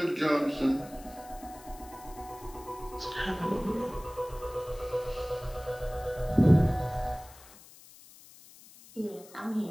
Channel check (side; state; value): left; noise; hiss, 21 dB below the sound